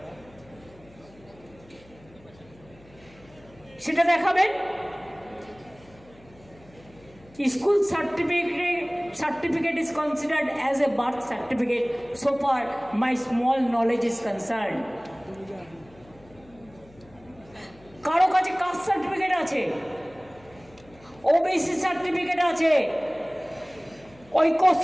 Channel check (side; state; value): left; noise; hum, 25 dB below the sound